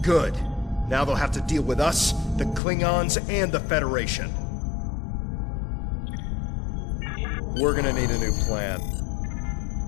Good. Now they'll have to deal with us, the Klingons, and the Federation. We're gonna need a new plan.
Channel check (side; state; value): right; drops out; at 2.6 s